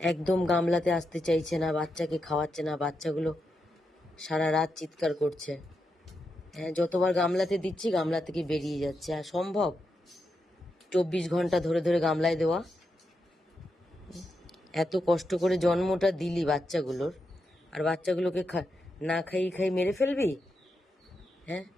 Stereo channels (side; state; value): both; normal; correlation 0.85